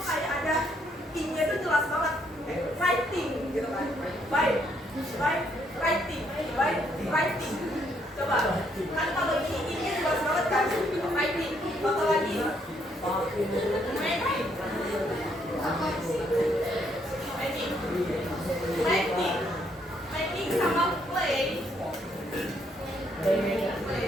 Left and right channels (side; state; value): both; normal; correlation 0.71